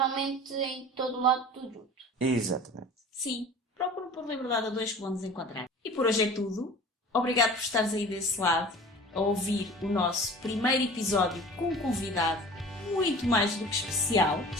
em todo lado tudo junto. Exatamente. Sim, procuram por Liberdade 2 que vão nos encontrar. E por hoje é tudo. Obrigado por estares aí desse lado a ouvir o nosso primeiro episódio com um convidado muito mais do que especial.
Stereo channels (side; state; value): both; normal; correlation 0.41